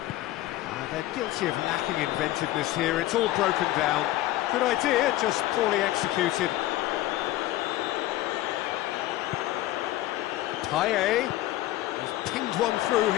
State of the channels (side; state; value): right; quieter; 15.8 dB